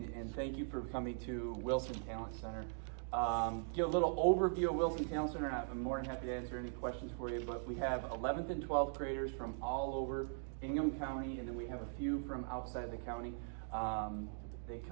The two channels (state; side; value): silent; left; digital silence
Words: thank you for coming to Wilson Talent Center. Give a little overview of Wilson Talent Center, and I'm more than happy to answer any questions for you, but we have 11th and 12th graders from all over Ingham County, and then we have a few from outside the county. They